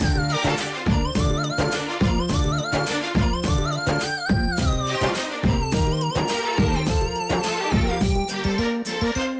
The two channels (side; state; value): both; identical; correlation 1.00